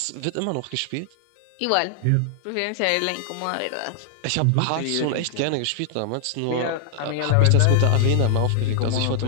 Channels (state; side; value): different; both; correlation 0.00